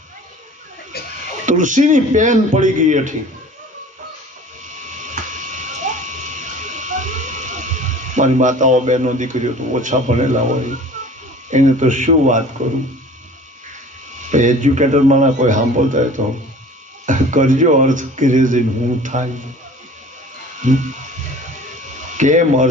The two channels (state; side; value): normal; both; correlation 0.45